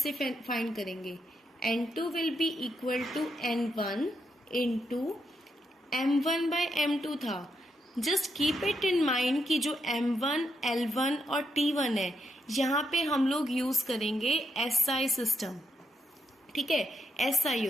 फाइंड करेंगे, N2 will be equal to N1 into M1 by M2 था। Just keep it in mind कि जो M1, L1 और T1 है यहाँ पे हम लोग यूज करेंगे SI सिस्टम। ठीक है, SI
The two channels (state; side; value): normal; both; correlation 0.81